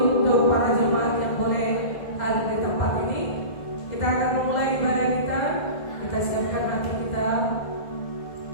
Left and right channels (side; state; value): right; late; 2.0 ms